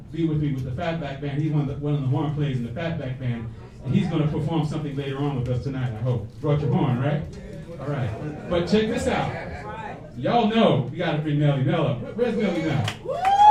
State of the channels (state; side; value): identical; both; correlation 1.00